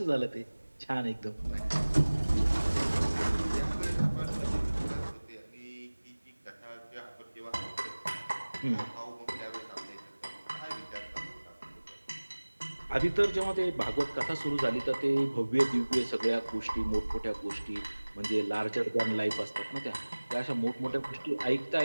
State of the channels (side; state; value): both; inverted; correlation -1.00